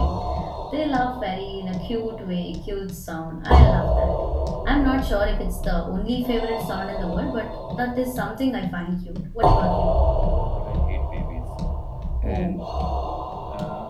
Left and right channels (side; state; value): both; identical; correlation 1.00